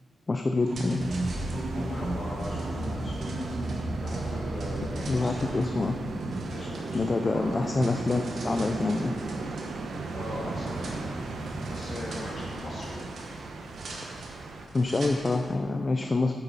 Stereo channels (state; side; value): normal; both; correlation 0.90